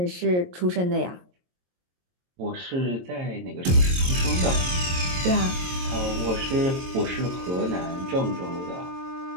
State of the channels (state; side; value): late; left; 22 ms